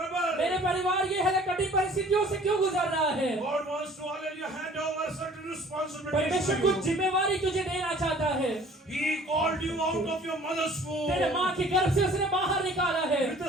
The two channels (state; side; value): normal; both; correlation 0.51